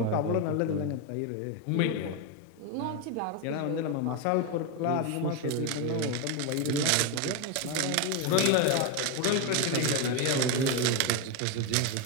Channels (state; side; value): different; both; correlation 0.02